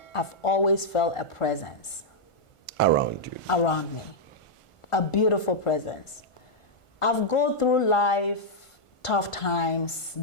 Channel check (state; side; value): late; right; 1.5 ms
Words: I've always felt a presence. Around you. Around me. A beautiful presence. I've gone through life, tough times